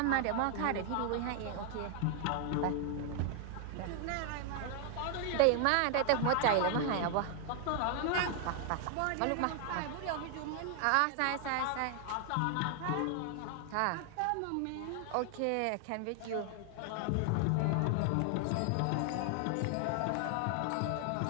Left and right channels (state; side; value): different; both; correlation 0.00